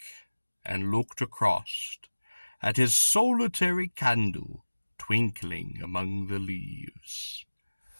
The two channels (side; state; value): both; inverted; correlation -1.00